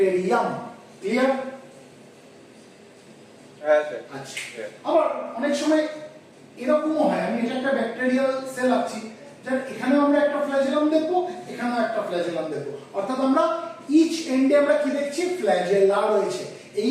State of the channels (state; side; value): identical; both; correlation 1.00